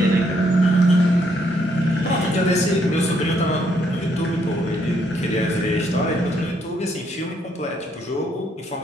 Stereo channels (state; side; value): normal; both; correlation 0.72